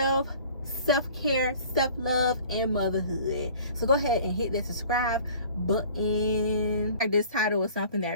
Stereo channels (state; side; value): inverted; both; correlation -0.48